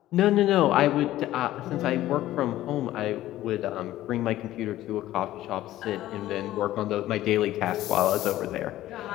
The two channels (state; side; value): quieter; right; 14.6 dB